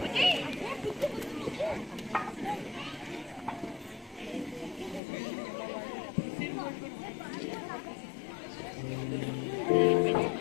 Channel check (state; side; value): drops out; right; at 5.0 s